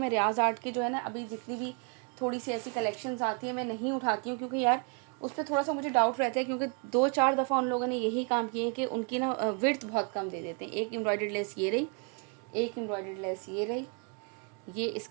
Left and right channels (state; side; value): quieter; left; 36.2 dB